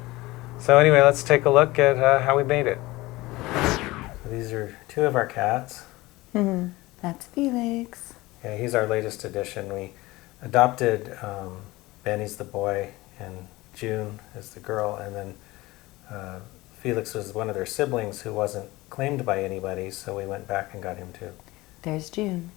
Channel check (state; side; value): quieter; right; 20.1 dB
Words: So anyway, let's take a look at how we made it. So these are two of our cats. That's Felix. Yeah, he's our latest addition. We adopted Benny's the boy, and June is the girl, and then Felix was one of their siblings who wasn't claimed by anybody, so we went back and got him too. There's June.